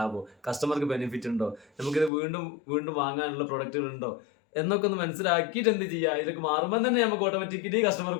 കസ്റ്റമർക്ക് ബെനിഫിറ്റ് ഉണ്ടോ, നമുക്കിത് വീണ്ടും വാങ്ങാനുള്ള പ്രൊഡക്റ്റുകൾ ഉണ്ടോ എന്നൊക്കെ ഒന്ന് മനസ്സിലാക്കിയിട്ട് എന്ത് ചെയ്യാ. ഇതൊക്കെ മാറുമ്പോൾ തന്നെ നമുക്ക് ഓട്ടോമാറ്റിക്കലി കസ്റ്റമർ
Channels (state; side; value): drops out; right; at 2.1 s